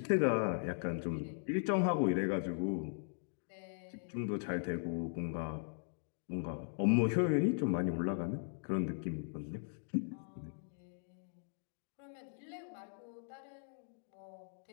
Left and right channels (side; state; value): right; silent; digital silence